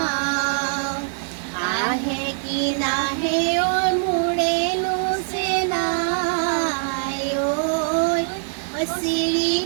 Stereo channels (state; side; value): silent; left; digital silence